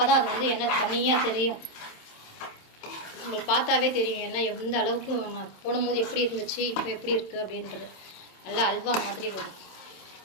தான் அது வந்து எண்ணெய் தனியாக தெரியும். உங்களுக்கு பார்த்தாவே தெரியும் எண்ணெய் எந்த அளவுக்கு போடும்போது எப்படி இருந்துச்சு, இப்போ எப்படி இருக்குது அப்படின்றது. நல்லா அல்வா மாதிரி வரும்.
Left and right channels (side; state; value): right; late; 27 ms